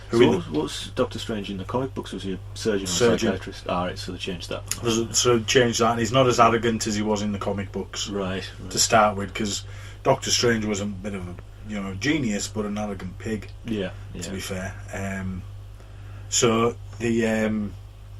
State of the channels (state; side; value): identical; both; correlation 1.00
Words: So what's Doctor Strange in the comic books? Was he a surgeon or Surgeon. psychiatrist? Ah, right, so they changed that. So changed that, and he's not as arrogant as he was in the comic books Right. to start with, because Doctor Strange was a bit of a genius, but an arrogant pig. Yeah. To be fair. So